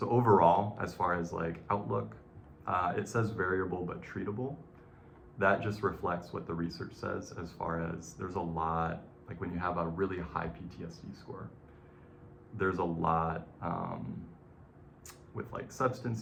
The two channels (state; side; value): identical; both; correlation 1.00